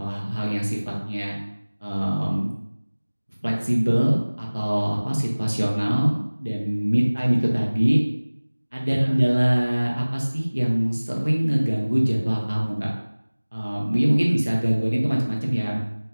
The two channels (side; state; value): both; inverted; correlation -1.00